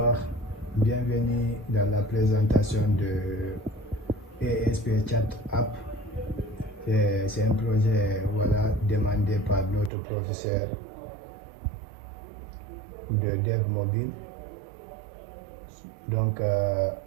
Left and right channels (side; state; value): left; drops out; at 9.9 s